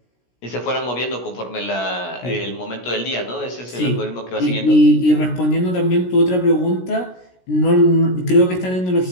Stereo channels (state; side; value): late; right; 16 ms